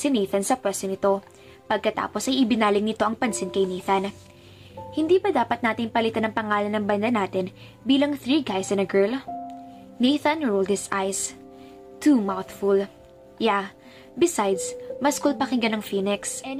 Nathan sa pwesto nito. Pagkatapos ay ibinaling nito ang pansin kay Nathan. Hindi ba dapat nating palitan ang pangalan ng banda natin bilang 3 guys and a girl? Nathan rolled his eyes. Too mouthful. Yeah, besides, mas cool pakinggan ng Phoenix.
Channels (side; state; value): both; identical; correlation 1.00